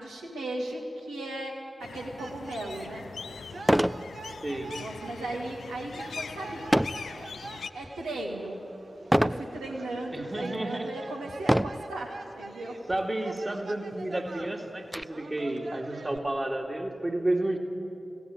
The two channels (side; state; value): both; normal; correlation 0.96